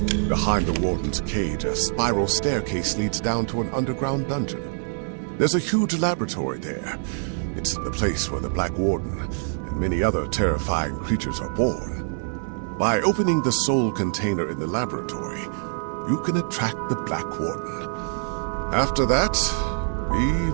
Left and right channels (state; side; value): silent; left; digital silence